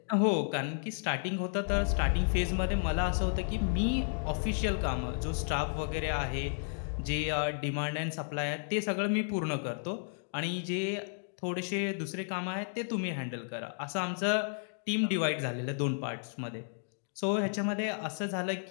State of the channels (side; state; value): right; silent; digital silence